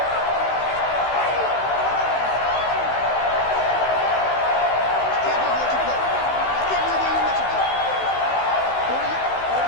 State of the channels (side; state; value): right; late; 16 ms